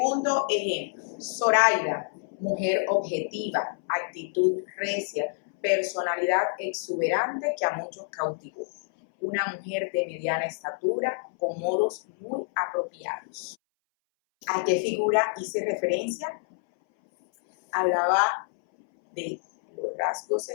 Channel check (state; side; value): silent; right; 60 dB below the other